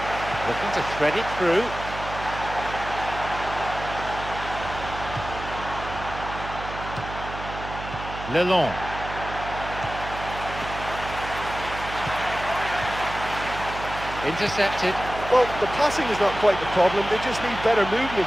Looking to thread it through. Lelon. Intercepted. Well, the passing is not quite the problem. They just need better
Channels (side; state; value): right; noise; hum, 10 dB below the sound